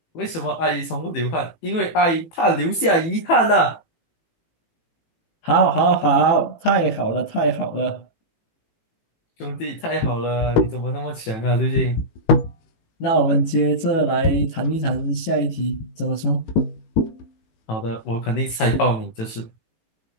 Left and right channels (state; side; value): late; right; 18 ms